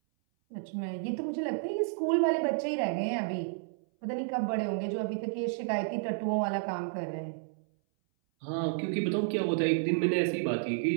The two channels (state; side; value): silent; left; 57 dB below the other